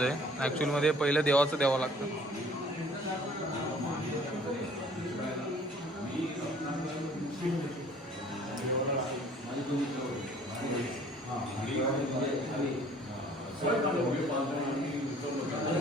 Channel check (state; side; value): normal; both; correlation 0.54